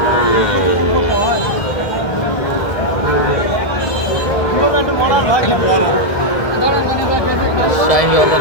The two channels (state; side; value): late; right; 1.7 ms